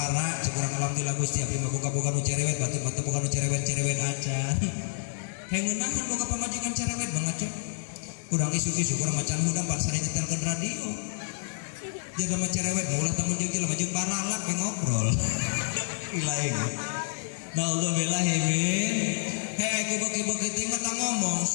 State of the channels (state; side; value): silent; right; digital silence